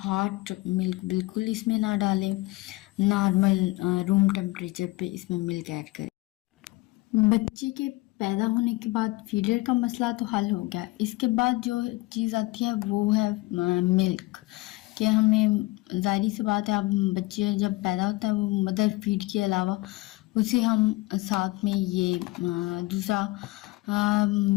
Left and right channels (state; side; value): quieter; right; 20.9 dB